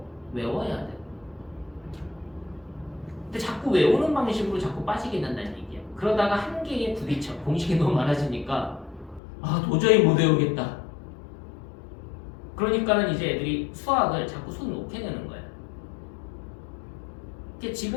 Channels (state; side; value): drops out; right; at 9.2 s